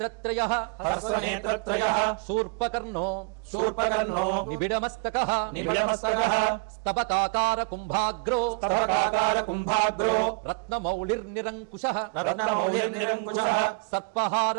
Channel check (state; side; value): quieter; left; 35.1 dB